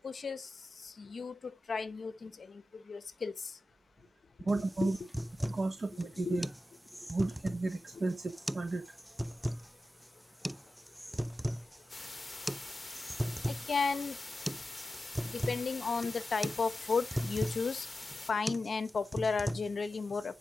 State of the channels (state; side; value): normal; both; correlation 0.93